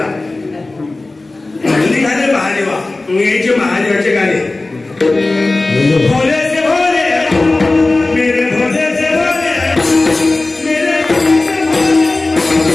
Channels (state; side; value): quieter; right; 3.1 dB